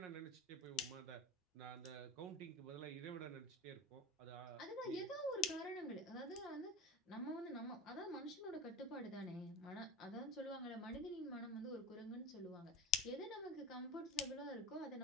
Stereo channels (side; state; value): both; normal; correlation 0.30